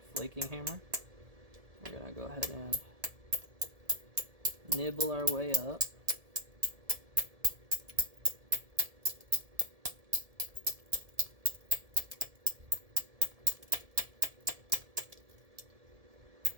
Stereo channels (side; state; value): left; late; 1.7 ms